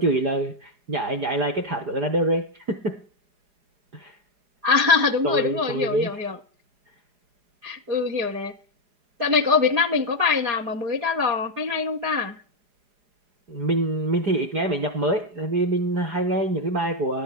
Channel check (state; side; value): late; left; 4.8 ms